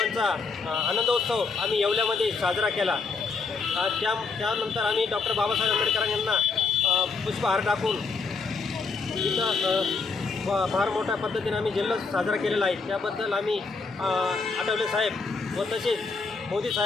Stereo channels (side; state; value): right; quieter; 4.5 dB